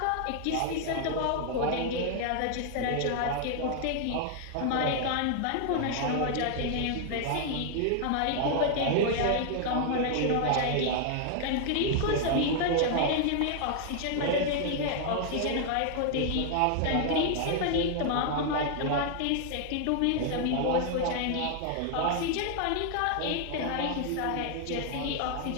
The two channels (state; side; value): different; both; correlation 0.00